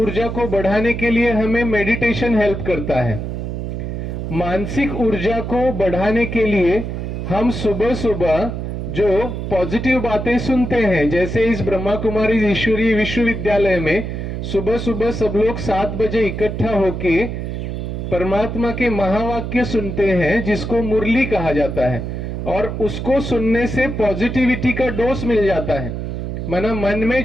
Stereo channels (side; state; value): right; noise; hum, 5 dB below the sound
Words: को बढ़ाने के लिए हमें मेडिटेशन हेल्प करता है। मानसिक ऊर्जा को बढ़ाने के लिए हम सुबह सुबह जो पॉजिटिव बातें सुनते हैं, जैसे इस ब्रह्मा कुमारी ईश्वरीय विश्वविद्यालय में सुबह सुबह सब लोग 7 बजे इकट्ठा होके परमात्मा के महावाक्य सुनते हैं, जिसको मुरली कहा जाता है। और उसको सुनने से पॉजिटिविटी का डोज मिल जाता है। माना मन में